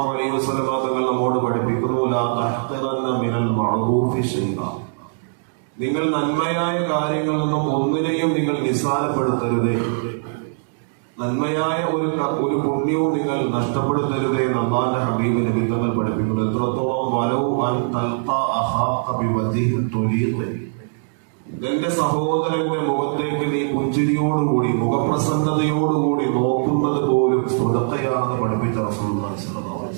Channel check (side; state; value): left; silent; digital silence